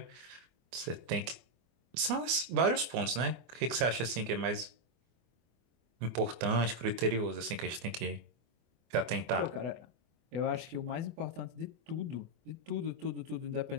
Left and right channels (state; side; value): late; left; 24 ms